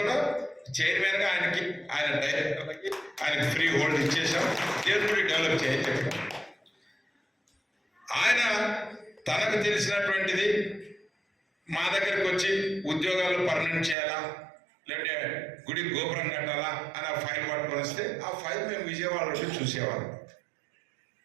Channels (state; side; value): drops out; left; at 14.0 s